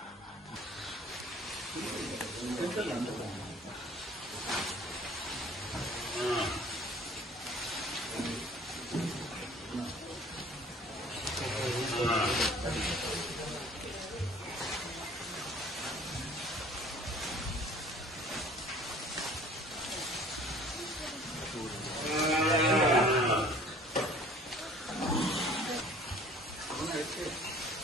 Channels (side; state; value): both; normal; correlation 0.50